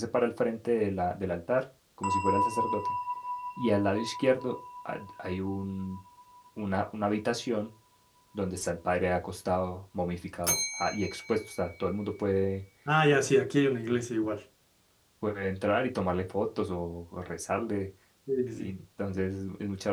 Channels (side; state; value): both; identical; correlation 1.00